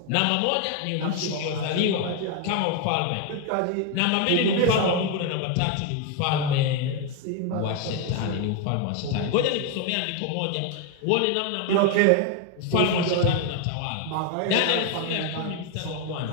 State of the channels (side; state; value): both; different; correlation 0.01